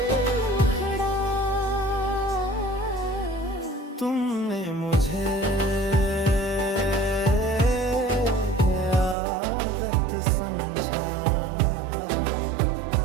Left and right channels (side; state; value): left; drops out; at 9.2 s